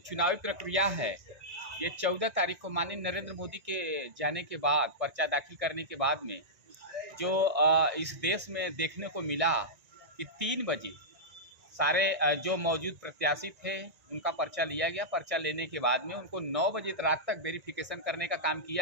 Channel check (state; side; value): late; left; 1.9 ms